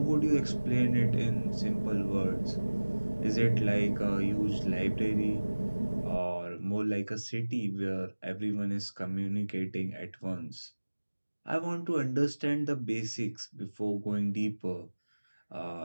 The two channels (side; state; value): both; inverted; correlation -1.00